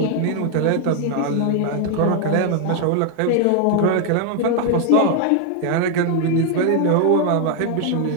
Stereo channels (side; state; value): both; different; correlation 0.00